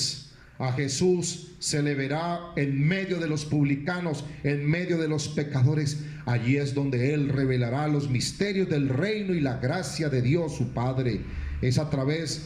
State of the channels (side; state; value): both; identical; correlation 1.00